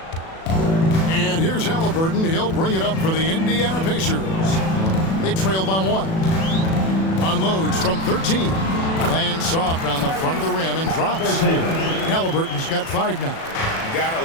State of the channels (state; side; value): late; right; 37 ms